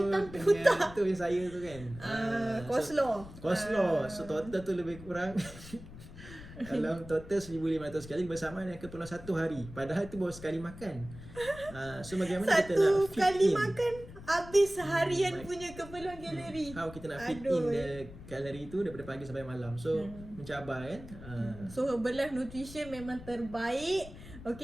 putah. Itu yang saya tu kan. Coleslaw. So total tu lebih kurang dalam total 1,500 kali bersamaan dengan keperluan 1 hari. Padahal itu baru sekali makan. So bagaimana kita nak fit kali in? makan habis seharian punya keperluan kalori. How kita nak fit in the kalori tu daripada pagi sampai malam. So mencabar kan. So Herbalife Nutrition memang terbaik.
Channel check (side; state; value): left; noise; rumble, 15 dB below the sound